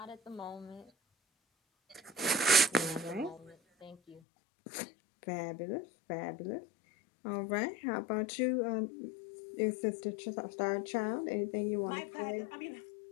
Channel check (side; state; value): right; drops out; at 4.2 s